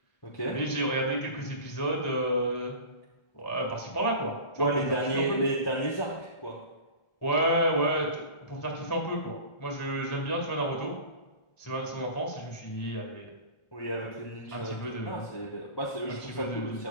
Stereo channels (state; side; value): late; right; 1.4 ms